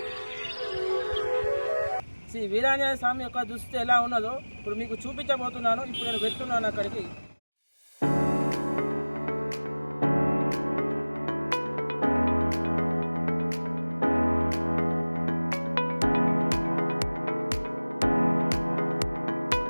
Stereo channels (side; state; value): both; inverted; correlation -1.00